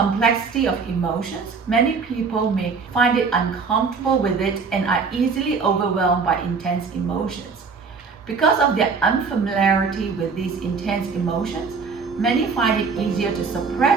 of emotions, many people may find it uncomfortable with it and are easily overwhelmed by intense emotions. Because of their unfamiliarity with these intense emotions, many find it easier to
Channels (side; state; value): left; quieter; 5.1 dB